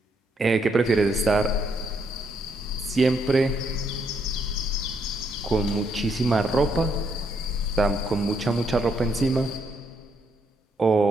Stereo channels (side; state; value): both; normal; correlation 0.74